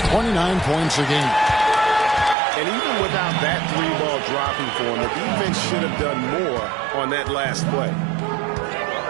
29 points a game. And even without that three ball dropping for him, the defense should have done more on that last play.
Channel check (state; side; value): drops out; left; at 2.4 s